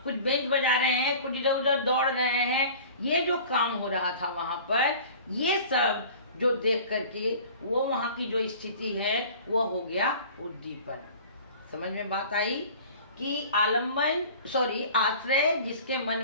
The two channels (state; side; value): inverted; both; correlation -0.43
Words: कुछ बेंच बजा रहे हैं, कुछ इधर उधर दौड़ रहे हैं, ये जो काम हो रहा था वहां पर, ये सब जो देख करके वो वहां की जो स्थिति है वो हो गया उद्दीपन। समझ में बात आई कि आलम्बन, आश्रय, जिसके मन